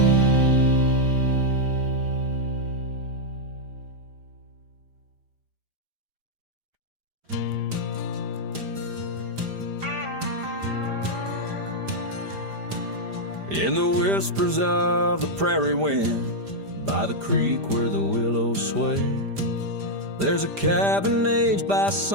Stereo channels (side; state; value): left; late; 5.0 ms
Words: In the whispers of the prairie wind, by the creek where the willows sway, there's a cabin aged by